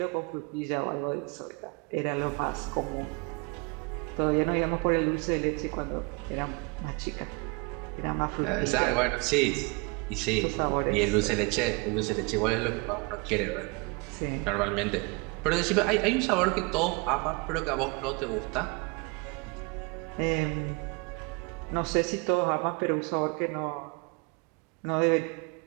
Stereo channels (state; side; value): quieter; left; 29.4 dB